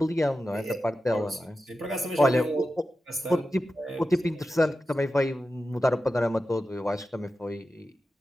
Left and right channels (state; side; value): normal; both; correlation 0.92